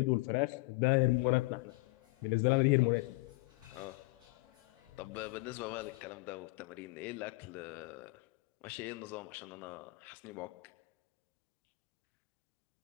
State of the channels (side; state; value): right; quieter; 25.6 dB